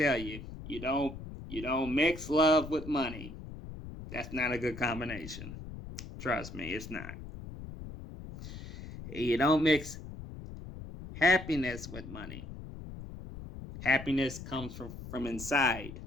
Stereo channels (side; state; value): left; noise; rumble, 11 dB below the sound